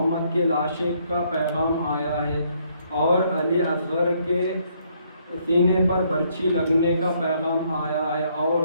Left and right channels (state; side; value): inverted; both; correlation -0.69